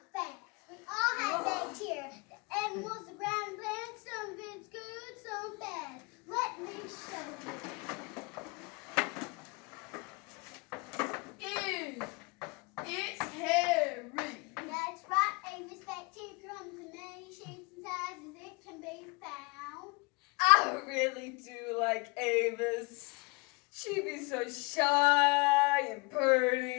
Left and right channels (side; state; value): right; quieter; 27.3 dB